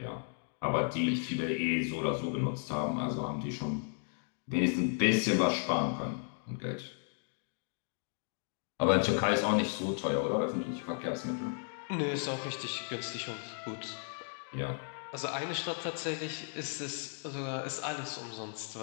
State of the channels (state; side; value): silent; right; 55 dB below the other